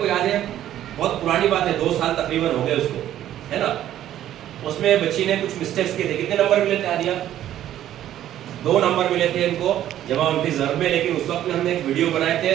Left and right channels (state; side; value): quieter; left; 12.0 dB